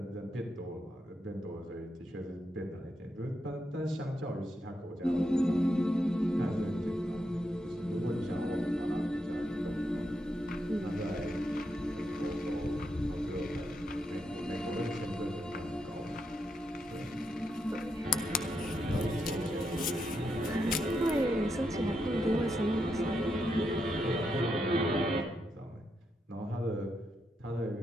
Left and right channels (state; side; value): normal; both; correlation 0.82